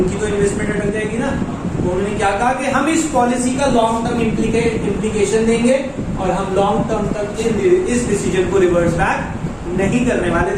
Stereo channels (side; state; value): both; identical; correlation 1.00